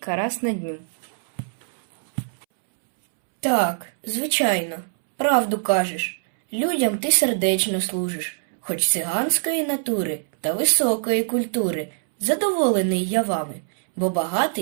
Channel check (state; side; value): silent; left; 63 dB below the other